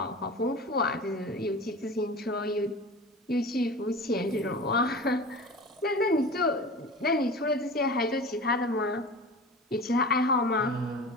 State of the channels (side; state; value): both; normal; correlation 0.35